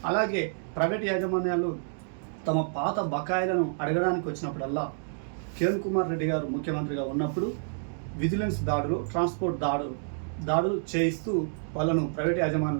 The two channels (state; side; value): silent; left; digital silence